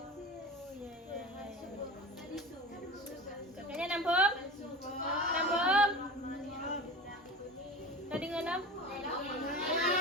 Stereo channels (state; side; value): normal; both; correlation 0.32